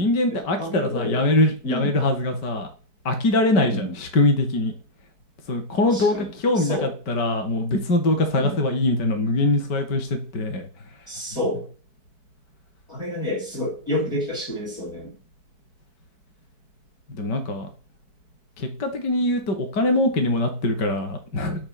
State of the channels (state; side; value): late; right; 4.6 ms